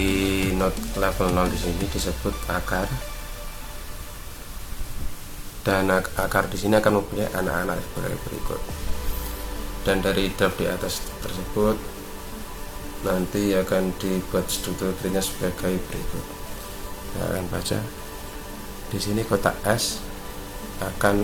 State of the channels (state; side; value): identical; both; correlation 1.00